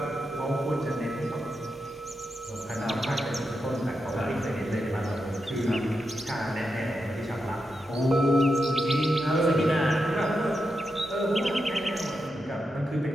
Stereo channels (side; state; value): both; normal; correlation 0.86